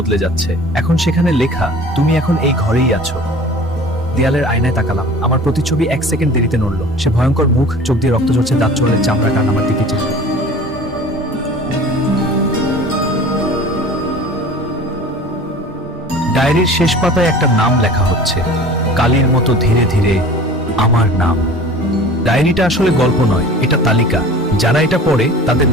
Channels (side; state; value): both; normal; correlation 0.42